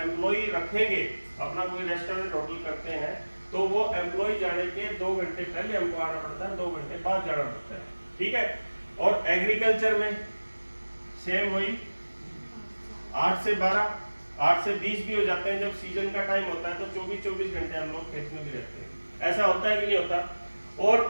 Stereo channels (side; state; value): both; inverted; correlation -1.00